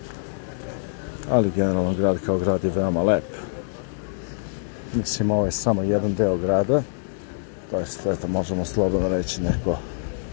Ali generalno grad kao grad je veoma lep. Mislim, ovo je samo jedan deo grada, to jest, eto, možemo slobodno reći neko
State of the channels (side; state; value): right; silent; 62 dB below the other